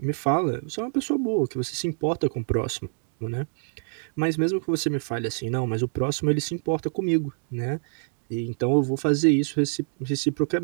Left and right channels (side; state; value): left; silent; digital silence